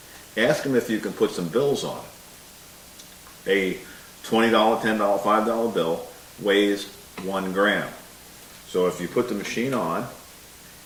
Ask them if you can put some bills on it. A $20, $10, $5 bill weighs 1 gram. So if you put the machine on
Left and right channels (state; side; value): identical; both; correlation 1.00